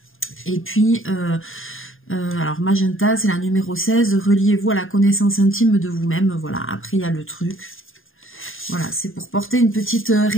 Et puis, alors, magenta, c'est la numéro 16, reliez-vous à la connaissance intime de vous-même, voilà. Après, il y a le truc. Voilà, c'est pour porter une petite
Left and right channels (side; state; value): right; late; 0.59 ms